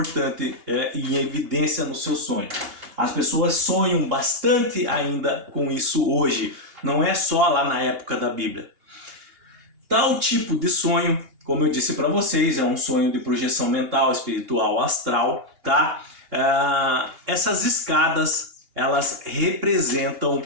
e em evidência no seu sonho. As pessoas sonham bastante ainda com isso hoje, não é só lá na época da Bíblia. Tal tipo de sonho, como eu disse para vocês, é um sonho de projeção mental, espiritual, astral, tá? Essas escadas, elas representam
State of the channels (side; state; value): left; late; 2.8 ms